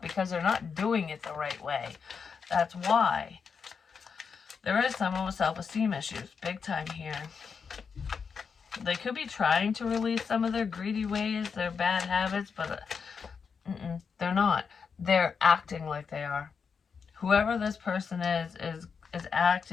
because they're not doing it the right way. That's why. There is someone with self-esteem issues. Big time here. They could be trying to release some of their greedy ways, their bad habits, but they're not. They're acting like they are. Whoever this person is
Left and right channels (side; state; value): right; quieter; 5.9 dB